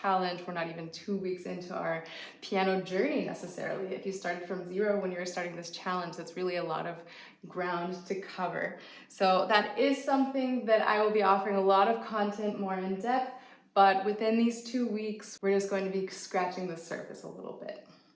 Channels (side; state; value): both; identical; correlation 1.00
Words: We're not even 2 weeks into our piano journey necessarily. If you started from 0 when you were starting this challenge, that's really a lot of ground to cover. So that is something that I will be offering a lot of content more in depth, but within these 2 weeks, we're just going to be scratching the surface a little bit.